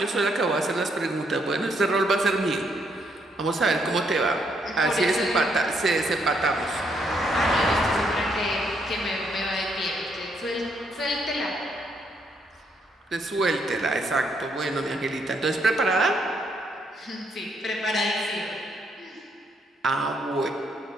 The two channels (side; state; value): both; normal; correlation 0.73